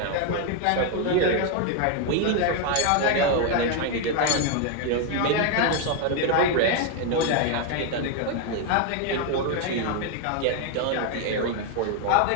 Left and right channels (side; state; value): both; different; correlation 0.01